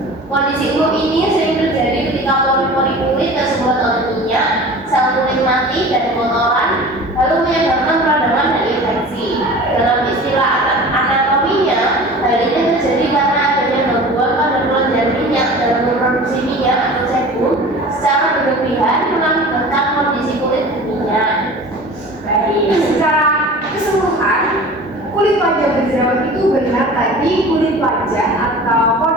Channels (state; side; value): normal; both; correlation 0.39